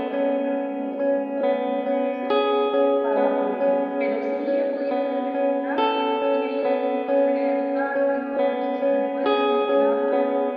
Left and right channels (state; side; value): identical; both; correlation 1.00